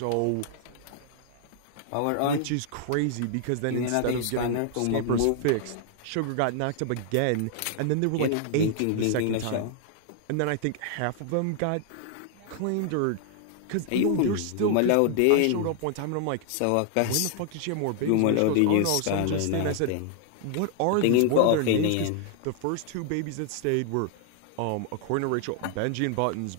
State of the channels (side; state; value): both; different; correlation 0.00